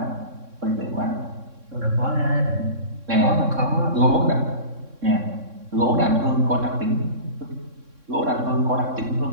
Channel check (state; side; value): late; left; 3.6 ms